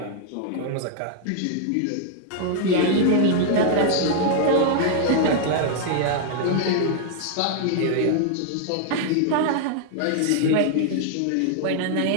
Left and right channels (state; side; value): different; both; correlation 0.00